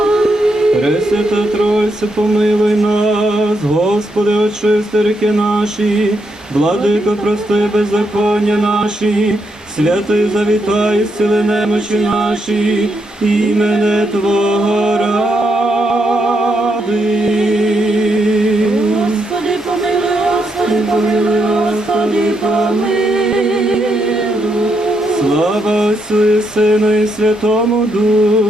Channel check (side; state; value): both; normal; correlation 0.79